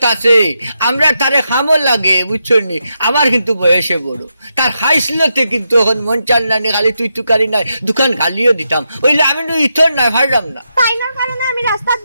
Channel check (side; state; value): both; inverted; correlation -0.85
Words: আছে আমরা তারে খামো লাগে বুঝছো নি আমার কিন্তু বয়সে বড় তার হাইসলতে কিন্তু এখন মন চাল নানি খালি তুই তুকারি নাই দোকান গালিও দিতাম ওইলে আমি তো ইথর নাই ভাড়াম না তাই না কারণে আমি রাস্তাত